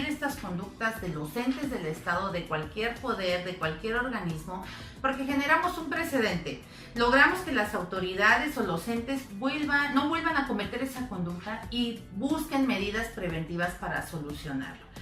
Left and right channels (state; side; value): identical; both; correlation 1.00